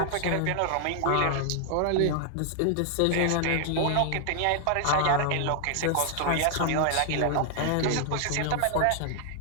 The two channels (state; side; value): different; both; correlation 0.00